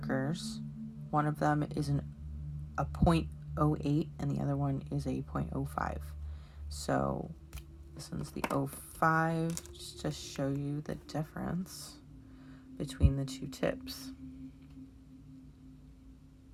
One of them is a 0.08 and the other one is a 0.05. So this one's the 05, just to show you the difference between the 2 tips.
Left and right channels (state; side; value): identical; both; correlation 1.00